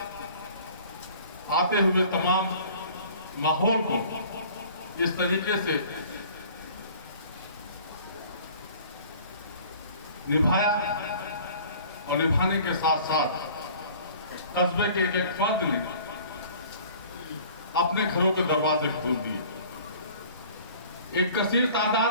आते हुए तमाम माहौल को इस तरीके से निभाया, और निभाने के साथ साथ कस्बे के एक एक फर्द ने अपने घरों के दरवाजे खोल दिए। एक कसीर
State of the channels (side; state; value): both; inverted; correlation -0.49